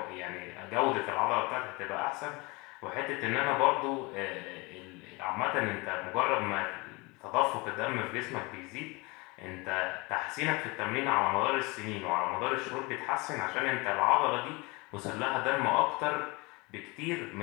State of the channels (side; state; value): right; quieter; 26.0 dB